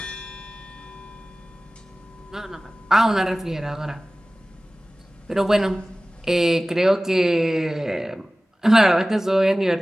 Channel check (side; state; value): both; normal; correlation 0.97